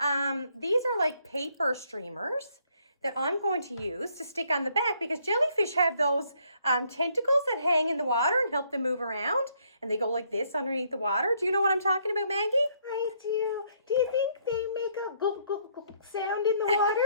These are like paper streamers that I'm going to use to stick on the back because jellyfish have those tentacles that hang in the water and help them move around. And they go like this underneath the water. Do you know what I'm talking about, Maggie? I do. Do you think they make a gulp, gulp, gulp sound in the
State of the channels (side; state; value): both; inverted; correlation -0.68